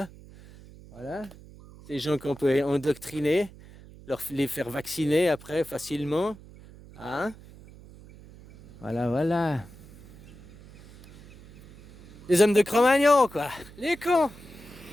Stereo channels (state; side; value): noise; right; hum, 20 dB below the sound